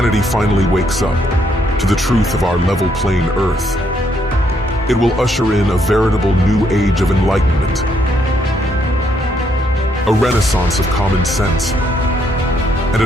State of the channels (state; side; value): normal; both; correlation 0.73